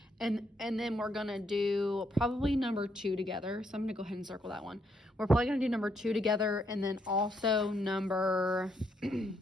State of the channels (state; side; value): normal; both; correlation 0.75